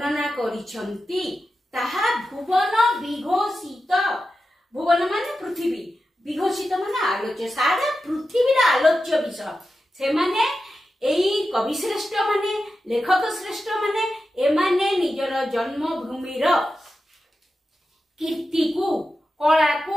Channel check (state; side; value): normal; both; correlation 0.91